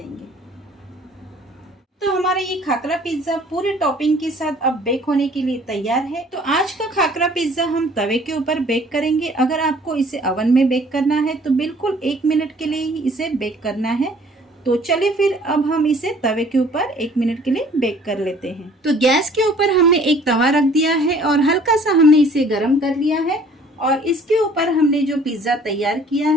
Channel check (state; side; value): normal; both; correlation 0.55